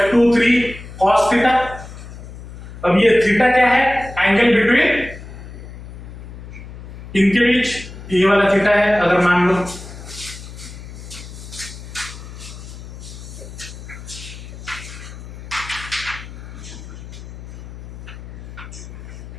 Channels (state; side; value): noise; left; hum, 13 dB below the sound